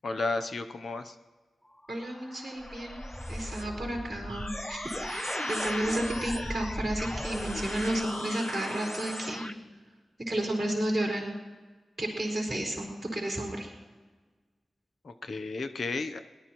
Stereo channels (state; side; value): normal; both; correlation 0.92